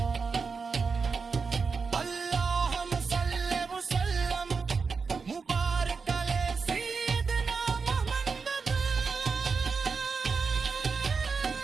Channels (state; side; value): quieter; left; 5.0 dB